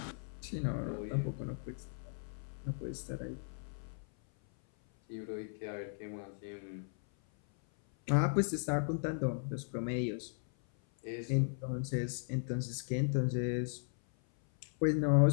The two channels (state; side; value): silent; right; 53 dB below the other